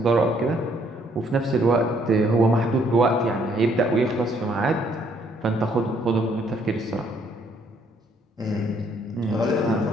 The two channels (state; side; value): normal; both; correlation 0.67